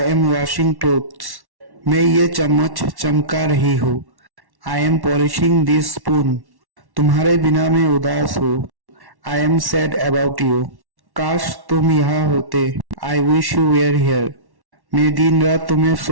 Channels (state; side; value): late; left; 1.1 ms